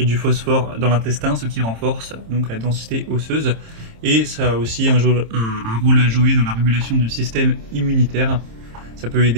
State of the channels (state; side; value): late; left; 26 ms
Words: du phosphore dans l'intestin, ce qui renforce donc la densité osseuse, et ça a aussi un rôle à jouer dans la régulation du système immunitaire. Ça peut